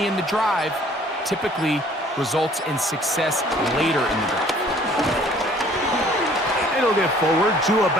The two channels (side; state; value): both; normal; correlation 0.56